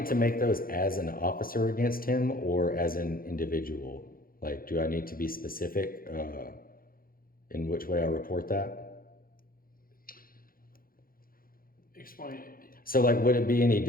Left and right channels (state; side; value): late; right; 0.42 ms